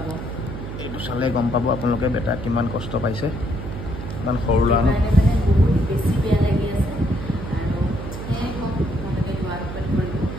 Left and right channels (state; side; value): noise; right; hum, 8 dB below the sound